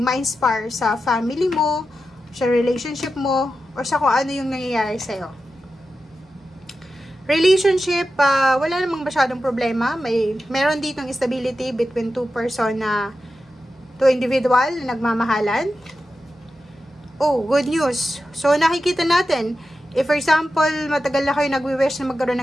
sa family mo, sa relationship mo, or sa kung ano yung nangyayari sa'yo. Relationship, wala namang masyadong problema. Meron ditong stability between two individual na nagmamahalan. Oh, good news. So, nakikita natin, if for example, matagal na kayo nagwi-wish na magkaroon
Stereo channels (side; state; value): both; normal; correlation 0.91